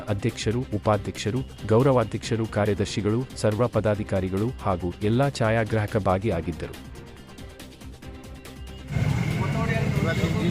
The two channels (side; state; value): both; identical; correlation 1.00